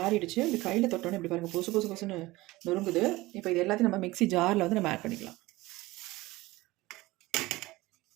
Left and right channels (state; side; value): quieter; left; 19.6 dB